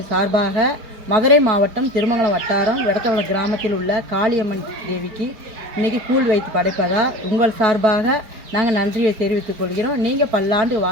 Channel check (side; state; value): left; late; 4.7 ms